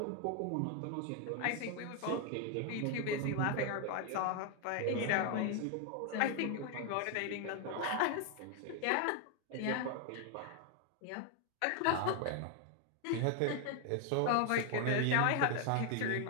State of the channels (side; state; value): both; different; correlation 0.00